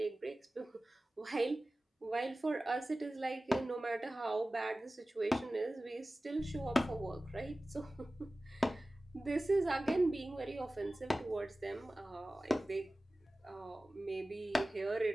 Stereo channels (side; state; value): both; normal; correlation 0.97